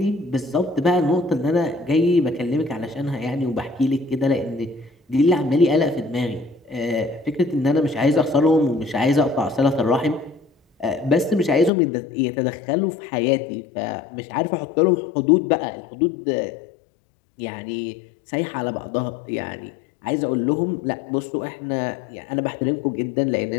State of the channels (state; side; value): drops out; right; at 11.7 s